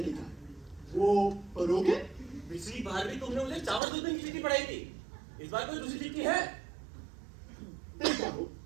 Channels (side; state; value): left; drops out; at 3.8 s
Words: लिखा, वो पढ़ोगे? पिछली बार भी तुमने मुझे चावल दूध की चिट्ठी पढ़ाई थी, इस बार कोई दूसरी चिट्ठी है? देखा हो।